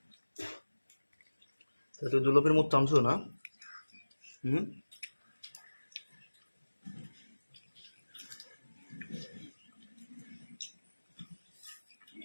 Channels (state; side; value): inverted; both; correlation -1.00